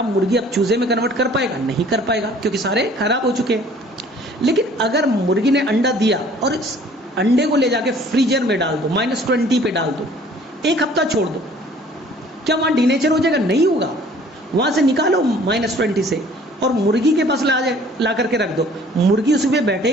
मुर्गी अब चूजे में कन्वर्ट कर पाएगा? नहीं कर पाएगा, क्योंकि सारे खराब हो चुके हैं। लेकिन अगर मुर्गी ने अंडा दिया और इस अंडे को ले जाके फ्रीजर में डाल दो, -20 पे डाल दो, 1 हफ्ता छोड़ दो, क्या वहां डीनेचर हो जाएगा? नहीं होगा। वहां से निकालो -20 से और मुर्गी के पास ला करके रख दो, मुर्गी उसी पे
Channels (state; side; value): normal; both; correlation 0.54